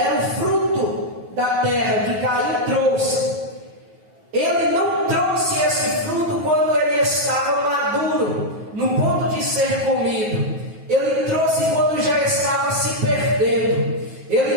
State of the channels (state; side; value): late; left; 9.3 ms